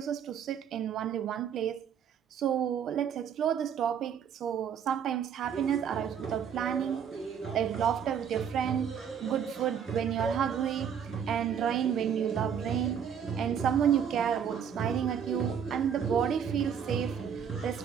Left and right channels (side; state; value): left; quieter; 8.0 dB